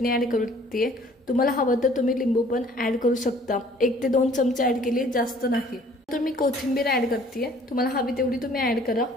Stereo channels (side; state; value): both; normal; correlation 0.55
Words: ॲड करते. तुम्हाला हवं तर तुम्ही लिंबू पण ॲड करू शकता. 1 ते 2 चमचे ॲड केली, जास्त नाही. तर मी कोथिंबीर ॲड करते. तुम्हाला हवी तेवढी तुम्ही ॲड करा